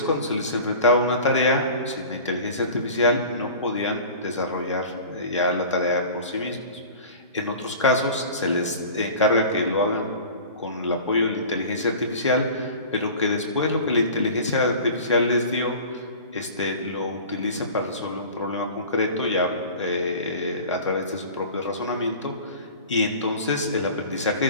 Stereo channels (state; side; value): inverted; both; correlation -0.39